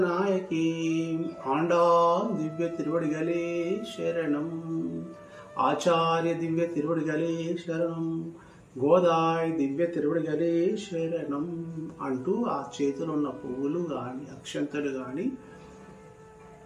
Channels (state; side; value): identical; both; correlation 1.00